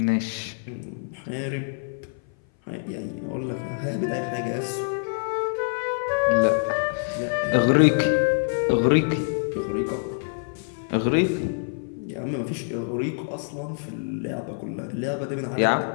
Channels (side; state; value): right; silent; 57 dB below the other